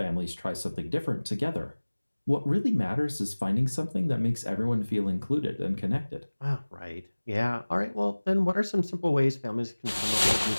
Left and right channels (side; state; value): both; inverted; correlation -1.00